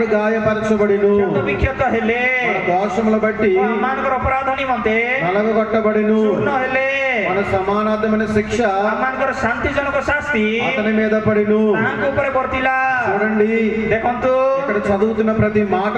గాయపరచబడిను, କ୍ଷତ ବିକ୍ଷତ ହେଲେ, మన దోషముల బట్టి ଆମମାନଙ୍କର ଅପରାଧ ନିମନ୍ତେ నలగొట్టబడిను, ଚୂର୍ଣ୍ଣ ହେଲେ, మన సమానార్థమైన శిక్ష ଆମମାନଙ୍କର ଶାନ୍ତିଜନକ ଶାସ୍ତି అతని మీద పడిను. ତାଙ୍କ ଉପରେ ବର୍ତ୍ତିଲା। చూడండి, ଦେଖନ୍ତୁ ఇక్కడ చదువుతున్న ప్రతి మాట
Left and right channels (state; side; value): identical; both; correlation 1.00